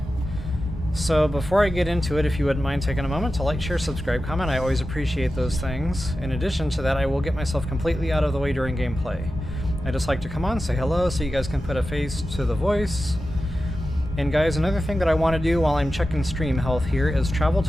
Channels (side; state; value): both; normal; correlation 0.93